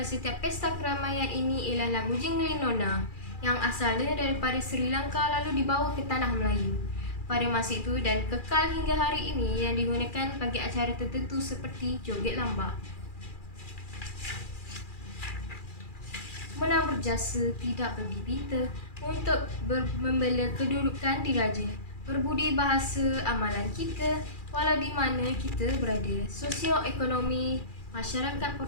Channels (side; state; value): right; late; 2.4 ms